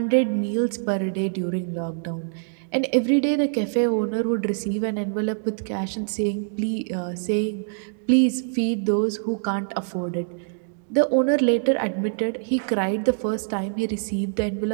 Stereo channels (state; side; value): silent; left; digital silence